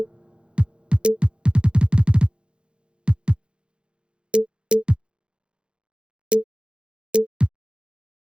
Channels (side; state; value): left; late; 0.054 ms